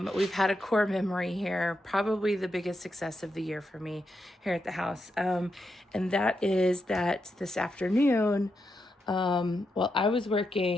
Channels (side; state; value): both; normal; correlation 0.84